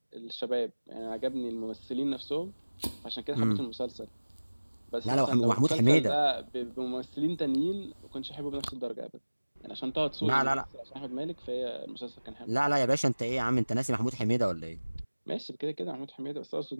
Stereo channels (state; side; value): inverted; both; correlation -1.00